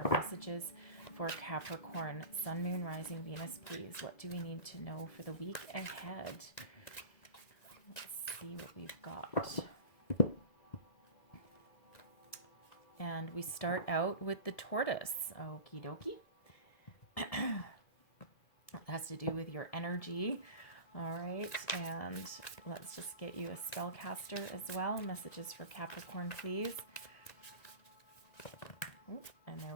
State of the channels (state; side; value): late; right; 1.7 ms